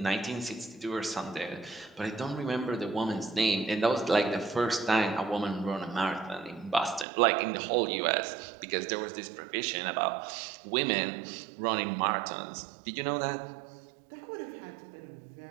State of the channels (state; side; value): drops out; left; at 7.1 s